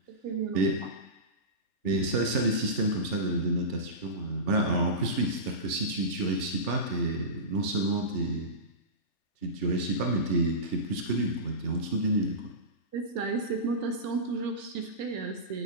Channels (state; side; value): late; right; 3.4 ms